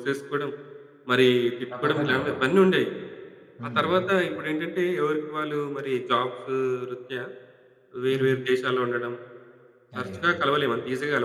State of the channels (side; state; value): both; identical; correlation 1.00